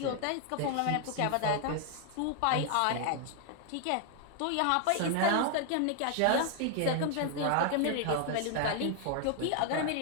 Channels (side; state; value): both; different; correlation 0.00